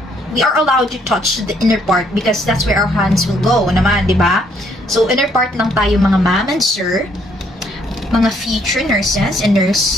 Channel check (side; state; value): both; normal; correlation 0.68